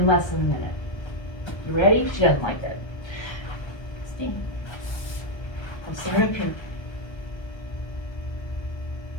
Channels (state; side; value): late; right; 1.3 ms